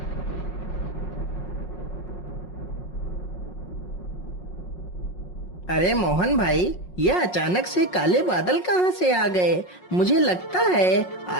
अरे मोहन भाई, यह अचानक से काले बादल कहाँ से आ गए। मुझे लगता है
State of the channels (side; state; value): right; late; 5.5 ms